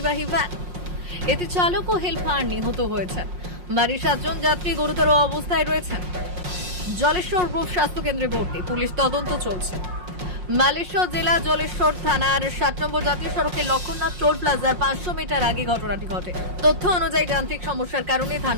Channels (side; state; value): left; late; 5.6 ms